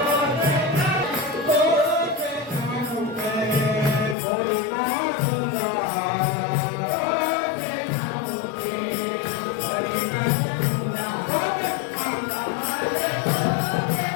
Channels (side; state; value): right; drops out; at 4.2 s